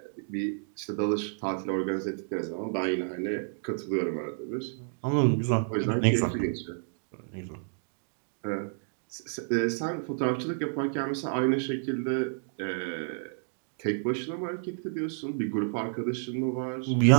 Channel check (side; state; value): left; silent; digital silence